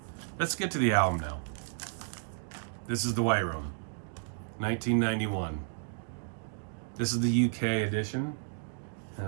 Let's get to the album now. This is The White Room, 1991. This is the UK edition. It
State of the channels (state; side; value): silent; left; digital silence